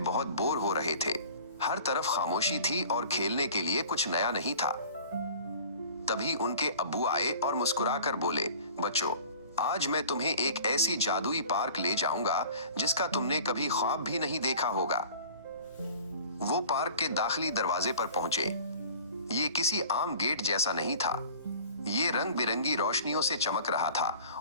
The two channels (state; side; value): inverted; both; correlation -0.45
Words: बहुत बोर हो रहे थे। हर तरफ खामोशी थी और खेलने के लिए कुछ नया नहीं था। तभी उनके अब्बू आए और मुस्कुराकर बोले, बच्चों, आज मैं तुम्हें एक ऐसी जादुई पार्क ले जाऊंगा जिसका तुमने कभी ख्वाब भी नहीं देखा होगा। वो पार्क के दाखिली दरवाजे पर पहुंचे। ये किसी आम गेट जैसा नहीं था। ये रंग बिरंगी रोशनियों से चमक रहा